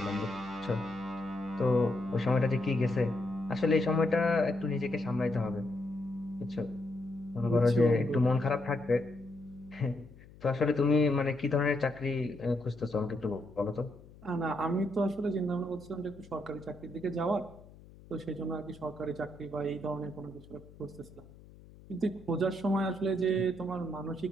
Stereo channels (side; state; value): left; noise; hum, 21 dB below the sound